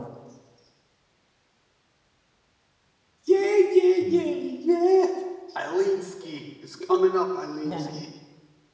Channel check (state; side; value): identical; both; correlation 1.00